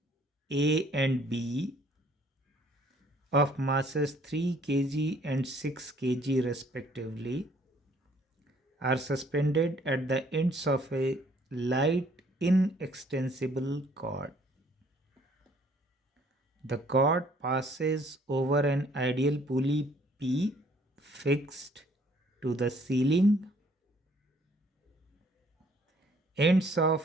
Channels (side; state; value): both; normal; correlation 0.61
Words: A and B of masses 3 kg and 6 kg respectively are suspended at the ends of a light inextensible cord. The cord passes over an ideal pulley P fixed to the ceiling. Ends